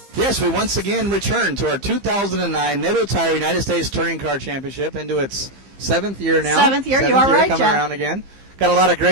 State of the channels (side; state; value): left; late; 15 ms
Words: Yes, we once again return to our 2009 Nitto Tire United States Touring Car Championship into its 7th year now. 7th year, you are right, coming Jeff. around again. Got a lot of